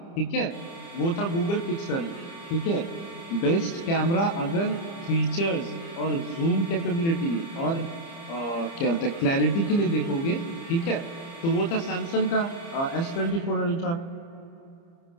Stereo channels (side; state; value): right; late; 30 ms